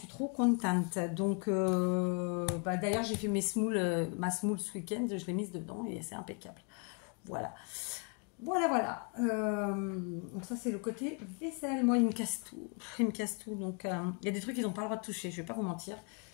trop contente. Donc, d'ailleurs, j'ai fait ma semoule ce week-end, je l'ai mise dedans et c'est impeccable. Voilà. Voilà. Donc ça, c'est le côté vaisselle. Moi, il me casse tout. Donc, il y a des trucs qu'ils n'ont pas le droit de toucher, je vais pas vous mentir.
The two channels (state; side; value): quieter; right; 35.1 dB